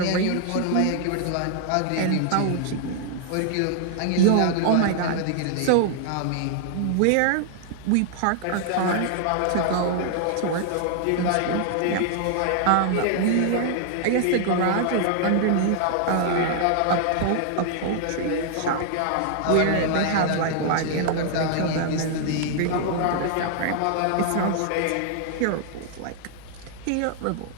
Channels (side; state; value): both; different; correlation 0.00